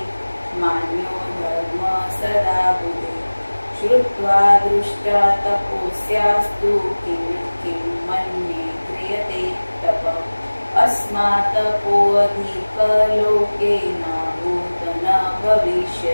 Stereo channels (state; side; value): inverted; both; correlation -1.00